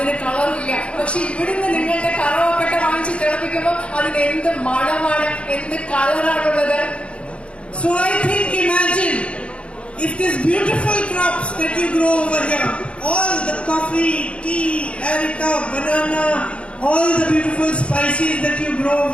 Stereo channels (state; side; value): late; right; 0.060 ms